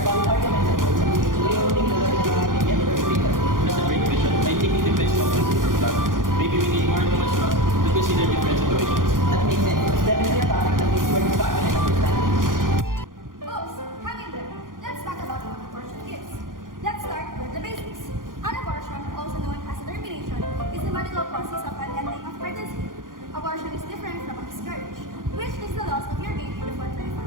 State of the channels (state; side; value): late; left; 0.90 ms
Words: valid arguments and points. Do you think the law is going to be get or freedom? That's a great question. I think it depends on person from that. Maybe we need more human trust to consider different situations. That makes sense. It's definitely a topic that needs more discussion and understanding. Oops, hang in there. Let's talk about what abortion is. Let's start with the basics. An abortion, also known as a termination, is the medical process of an ending of pregnancy. Abortion is different from a miscarriage, which is the loss of your baby before 24